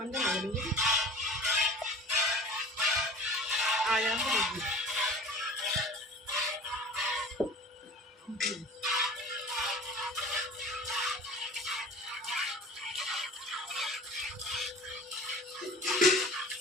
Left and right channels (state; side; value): normal; both; correlation 0.40